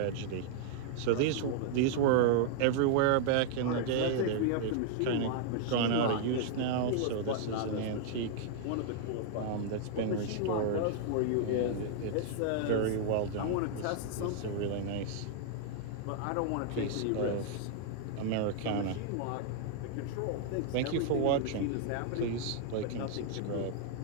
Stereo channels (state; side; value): different; both; correlation 0.00